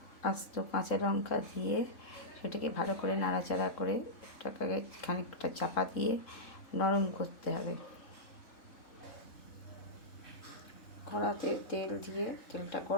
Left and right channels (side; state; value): right; late; 3.7 ms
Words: আস্ত কাঁচা লঙ্কা দিয়ে সেটাকে ভালো করে নাড়াচাড়া করে ওটাকে খানিকটা চাপা দিয়ে নরম করতে হবে। কড়াতে তেল দিয়ে তেলটা